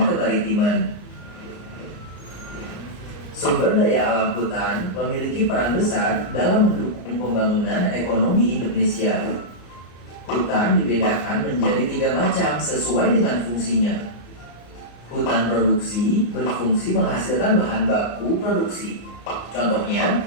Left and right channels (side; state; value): right; late; 34 ms